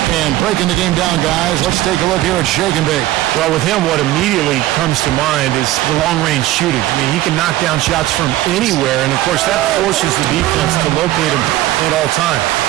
And breaking the game down, guys, let's take a look here at Shake and Bake. Well, with him, what immediately comes to mind is the long-range shooting. I mean, he can knock down shots from anywhere, and of course, that forces the defense to locate him at all times.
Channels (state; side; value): quieter; left; 15.9 dB